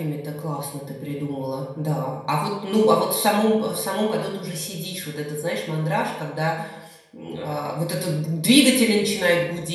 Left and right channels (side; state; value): both; identical; correlation 1.00